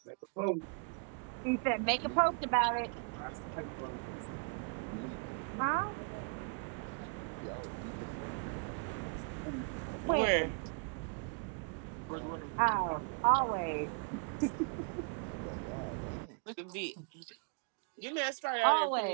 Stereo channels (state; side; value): quieter; left; 36.6 dB